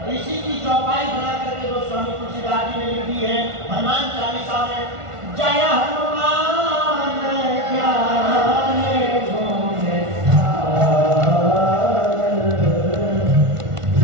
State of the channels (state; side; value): late; left; 1.4 ms